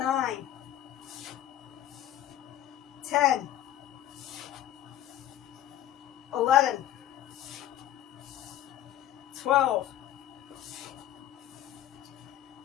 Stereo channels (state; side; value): quieter; right; 12.4 dB